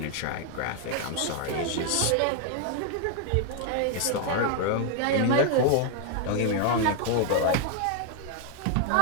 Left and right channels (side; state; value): both; different; correlation 0.00